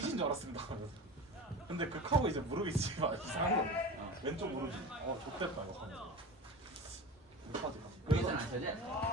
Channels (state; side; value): normal; both; correlation 0.31